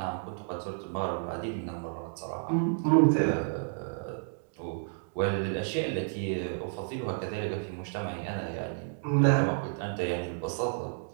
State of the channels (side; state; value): left; silent; digital silence